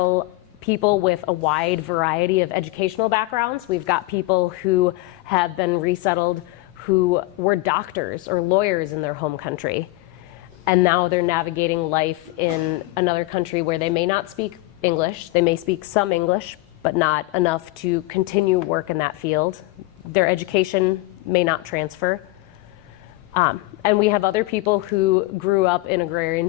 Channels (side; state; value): right; quieter; 20.2 dB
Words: people with a wide variety of educational backgrounds. We've got people who have been resettled who were doctors or lawyers in their home country, and now they're navigating life in another country where they may not speak English. They may speak some English, but not enough to continue work in that field. Their education may not transfer. And we have other people who grew up in agrarian